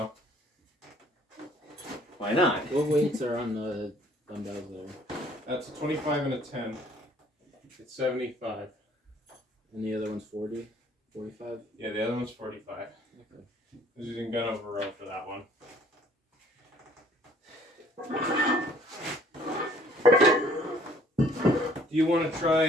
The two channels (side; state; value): both; normal; correlation 0.58